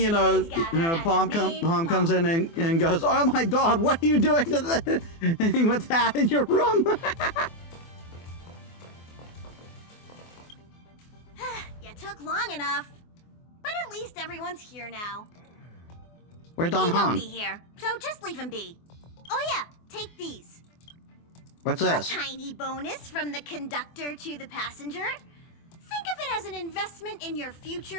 know, Pom comes in and goes, "Oh my God, what are you doing to the with that in your room?" You took long enough, but at least everyone's here now. Where's Don He won't Han? be here, so just leave him be. Oh yeah, take these. What's this? A tiny bonus from the conductor to the passenger. Think of it as an investment in your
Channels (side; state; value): right; late; 24 ms